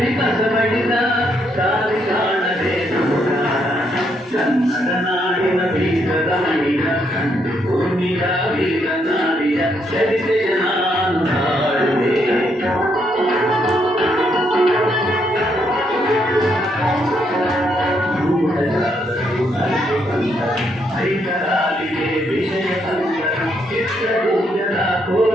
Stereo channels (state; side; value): normal; both; correlation 0.75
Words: ಕಸಬಡಿದ ದಾರಿ ಕಾಣದೆ ನಮಗ. ಕನ್ನಡ ನಾಡಿನ ವೀರದ ಮಣಿಯ ಕಂಡು ಭೂಮಿಯ ವೀರನಾರಿಯ ಚರಿತೆಯ ನಾನು ಮಾಡುವೆ. ಹೈದರಾಲಿಗೆ ವಿಷಯ ತಂದರು, ಚಿತ್ರದುರ್ಗದ